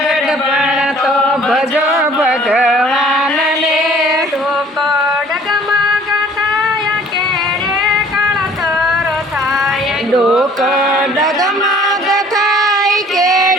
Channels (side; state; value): both; normal; correlation 0.54